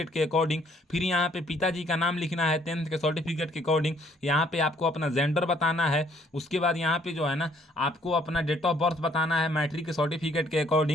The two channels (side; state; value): both; normal; correlation 0.64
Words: के अकॉर्डिंग। फिर यहाँ पे पिताजी का नाम लिखना है 10th के सर्टिफिकेट के अकॉर्डिंग। यहाँ पे आपको अपना जेंडर बताना है। उसके बाद यहाँ पे जो है ना आपको अपना डेट ऑफ बर्थ बताना है मैट्रिक के सर्टिफिकेट के